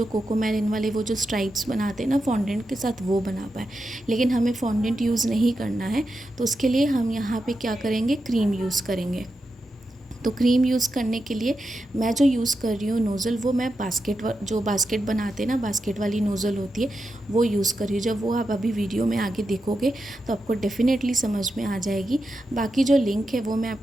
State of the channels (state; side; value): normal; both; correlation 0.88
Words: कोकोमेलिन वाले वो जो स्ट्राइप्स बनाते हैं ना फॉन्डेंट के साथ, वो बना पाए। लेकिन हमें फॉन्डेंट यूज़ नहीं करना है, तो उसके लिए हम यहाँ पे क्या करेंगे, क्रीम यूज़ करेंगे। तो क्रीम यूज़ करने के लिए मैं जो यूज़ कर रही हूँ नोज़ल, वो मैं बास्केट बनाते हैं ना, बास्केट वाली नोज़ल होती है, वो यूज़ कर रही हूँ। जब वो आप अभी वीडियो में आगे देखोगे तो आपको डेफिनेटली समझ में आ जाएगी। बाकी जो लिंक है वो मैं